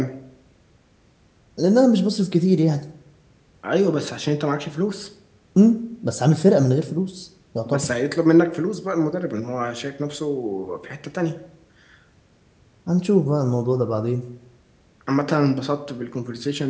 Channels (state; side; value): identical; both; correlation 1.00